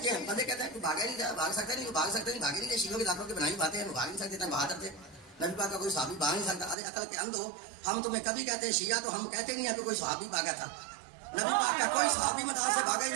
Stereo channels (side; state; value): left; drops out; at 6.8 s